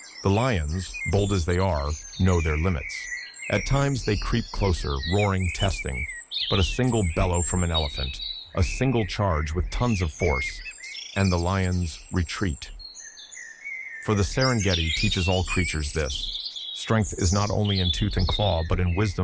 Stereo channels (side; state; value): both; identical; correlation 1.00